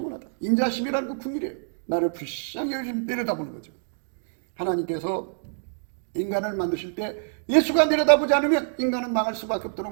인자하심이라는 그 궁의래요. 나를 불쌍히 내려다보는 거죠. 하나님께서 인간을 만드실 때 예수가 내려다보지 않으면 인간은 망할 수밖에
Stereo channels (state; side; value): silent; left; digital silence